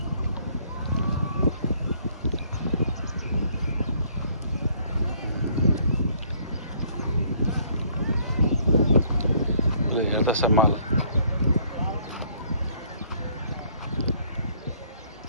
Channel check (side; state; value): both; inverted; correlation -0.63